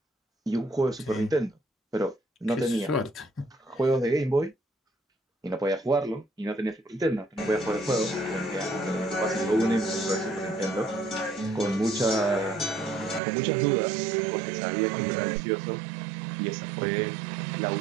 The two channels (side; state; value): left; drops out; at 13.2 s